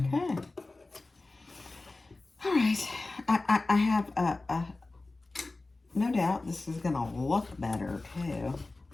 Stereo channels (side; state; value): right; quieter; 3.2 dB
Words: All right. I have no doubt this is gonna look better too.